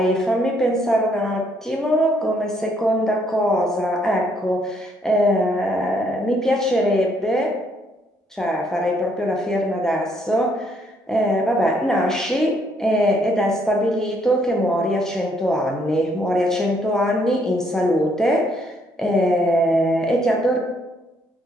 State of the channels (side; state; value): both; normal; correlation 0.69